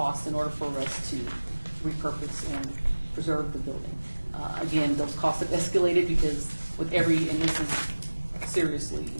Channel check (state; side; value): inverted; both; correlation -1.00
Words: in order for us to repurpose and preserve the building. Again, those costs have escalated because with every, and this is seriously,